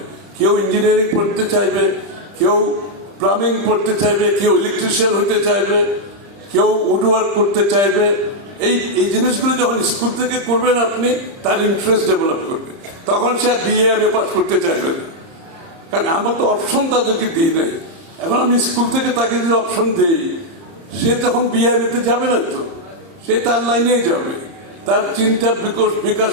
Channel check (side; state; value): left; late; 30 ms